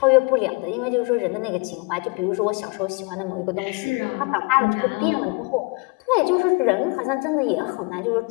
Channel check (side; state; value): right; quieter; 30.9 dB